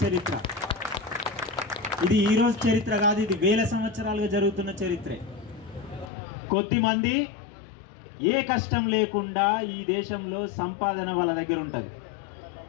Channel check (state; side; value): drops out; right; at 6.1 s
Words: చరిత్ర. ఇది ఈరోజు చరిత్ర కాదు, ఇది వేల సంవత్సరాలుగా జరుగుతున్న చరిత్రే. కొద్దిమంది ఏ కష్టం లేకుండా ఈ దేశంలో సంపాదన వాళ్ళ దగ్గర ఉంటుంది.